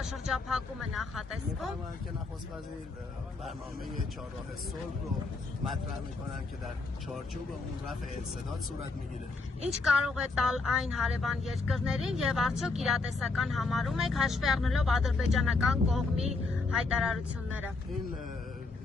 նախատեսվում։ که نخست وزیر برنامه چهارراه صلح رو مطرح میکنن که در چارچوب اون رفع انسداد صورت میگیره. Ինչ կարող է տալ այն հարևան երկրներին եւ արդյոք իրատեսական համարում եք հաշվի առնելով ադրբեջանական կողմի հայտարարությունները։ این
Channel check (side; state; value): right; quieter; 3.8 dB